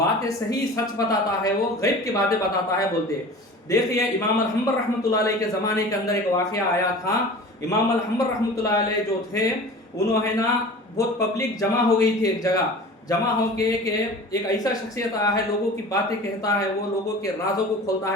सही सच बताता है, वो गैब की बातें बताता है बोलते। देखिए, इमाम अल-हम्बर रहमतुल्लाह अलैह के ज़माने के अंदर एक वाक़या आया था। इमाम अल-हम्बर रहमतुल्लाह अलैह जो थे, उन्होंने ना बहुत पब्लिक जमा हो गई थी एक जगह। जमा हो के एक ऐसा शख्सियत आया है, लोगों की बातें कहता है, वो लोगों के राजों को खोलता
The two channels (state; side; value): normal; both; correlation 0.39